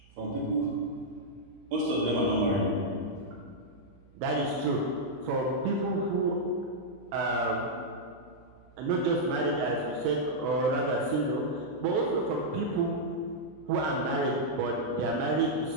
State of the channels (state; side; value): noise; right; hum, 26 dB below the sound